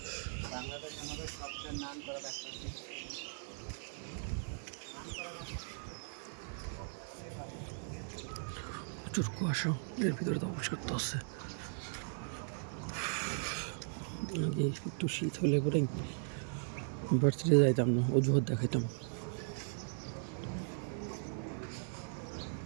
প্রচুর কুয়াশা, এর ভিতরে তো অফিস করতে হচ্ছে। আগে একটু শীত হলে পরে ভার্সিটি যাইতাম না, অজুহাত দেখাইতাম।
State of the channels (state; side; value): silent; left; 52 dB below the other